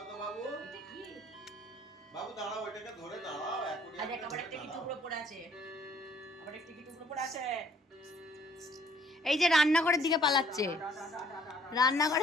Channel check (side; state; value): both; normal; correlation 0.61